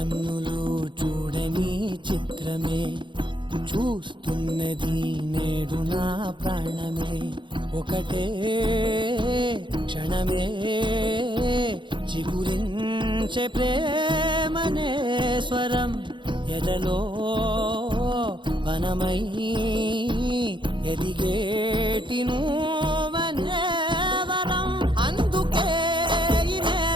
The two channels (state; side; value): late; left; 0.23 ms